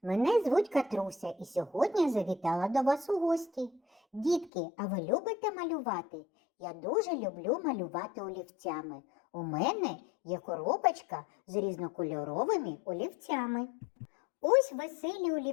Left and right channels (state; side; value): drops out; right; at 4.5 s